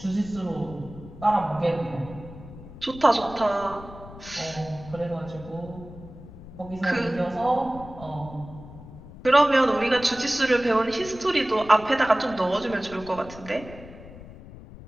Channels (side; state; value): left; noise; rumble, 16 dB below the sound